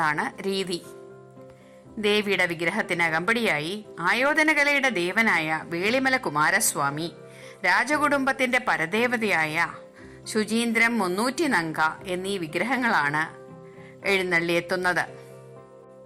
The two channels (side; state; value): both; identical; correlation 1.00